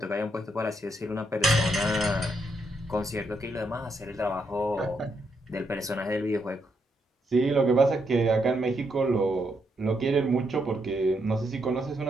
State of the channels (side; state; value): both; normal; correlation 0.78